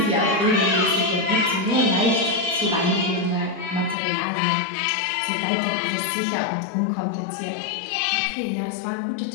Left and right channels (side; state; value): right; drops out; at 4.0 s